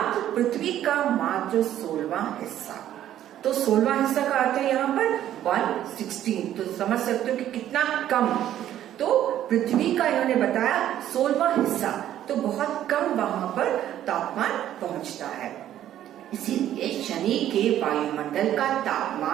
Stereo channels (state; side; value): quieter; left; 11.8 dB